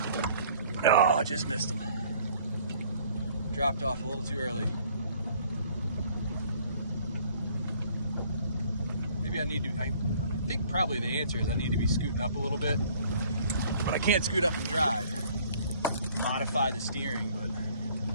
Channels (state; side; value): inverted; both; correlation -0.57